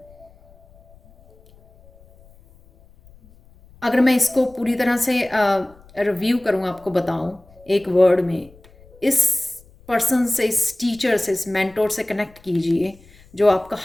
अगर मैं इसको पूरी तरह से रिव्यू करूँ, आपको बताऊँ एक वर्ड में, इस पर्सन से, इस टीचर से, इस मेंटोर से कनेक्ट कीजिए, जो आपका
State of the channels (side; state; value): left; noise; rumble, 27 dB below the sound